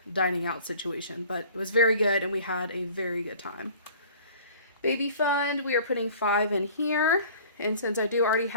dining out situation, but it was very good and we had a very good time. Baby fund, we are putting 5 in here, and since I do already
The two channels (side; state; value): both; inverted; correlation -0.48